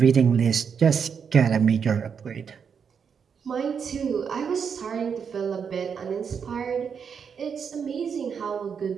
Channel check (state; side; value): quieter; left; 6.7 dB